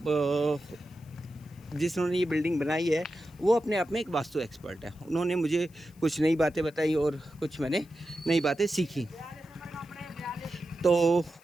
जिन्होंने ये बिल्डिंग बनाई है वो अपने आप में एक वास्तु एक्सपर्ट है। उन्होंने मुझे कुछ नई बातें बताई और कुछ मैंने नई बातें सीखी। तो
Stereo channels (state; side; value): noise; left; hiss, 29 dB below the sound